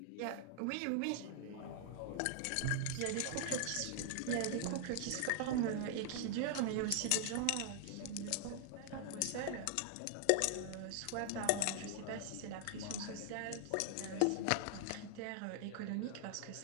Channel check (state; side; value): different; both; correlation 0.00